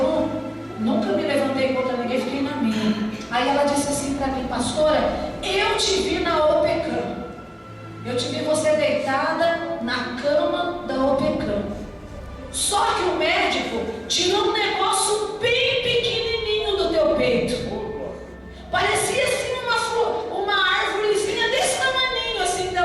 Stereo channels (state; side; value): identical; both; correlation 1.00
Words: nunca me levantei contra ninguém, fiquei na minha. Aí ela disse assim para mim, pastora, eu te vi na OPECAM. Eu te vi você deitada na cama da OPECAM. Só que o médico tirou um negócio bem pequenininho do teu peito. Parecia assim uma árvorezinha desse tamaninho, assim.